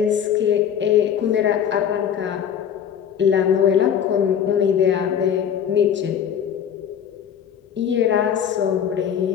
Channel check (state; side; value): quieter; right; 8.7 dB